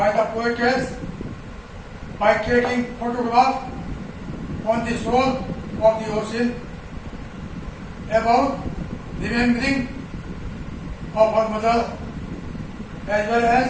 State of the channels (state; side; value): identical; both; correlation 1.00